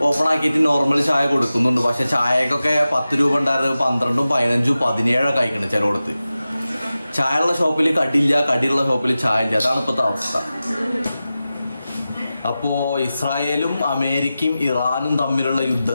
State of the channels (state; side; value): inverted; both; correlation -0.94